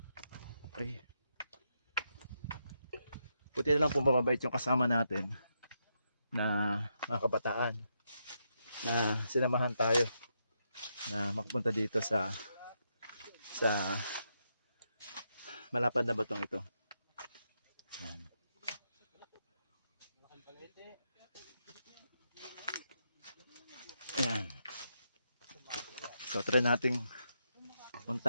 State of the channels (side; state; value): both; inverted; correlation -0.82